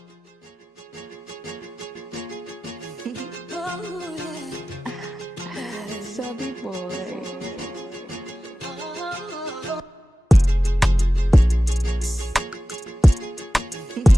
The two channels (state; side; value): normal; both; correlation 0.95